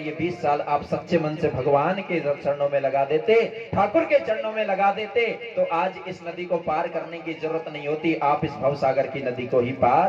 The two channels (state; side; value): identical; both; correlation 1.00